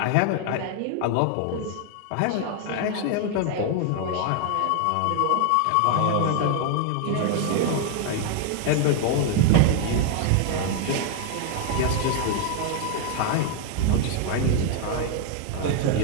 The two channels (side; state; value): both; different; correlation 0.00